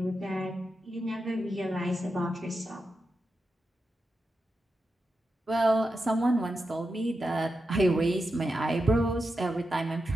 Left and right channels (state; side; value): normal; both; correlation 0.89